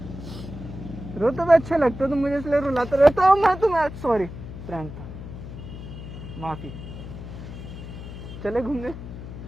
रोते हुए अच्छे लगते हो तुम मुझे, इसलिए रुलाते रहता हूँ मैं तुम्हें। सॉरी, प्रैंक था, माफी। चले घूमने?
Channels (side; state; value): left; noise; hum, 11 dB below the sound